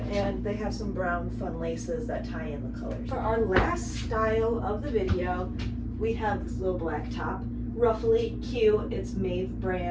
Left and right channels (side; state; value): both; identical; correlation 1.00